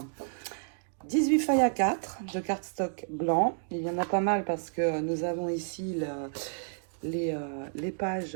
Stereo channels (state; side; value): silent; left; digital silence